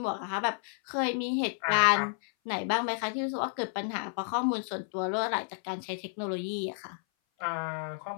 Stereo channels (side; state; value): right; silent; 57 dB below the other